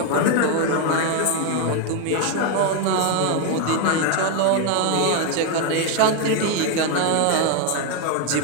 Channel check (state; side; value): different; both; correlation 0.01